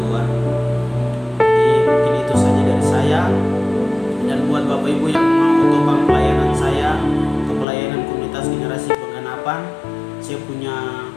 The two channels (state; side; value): drops out; right; at 7.7 s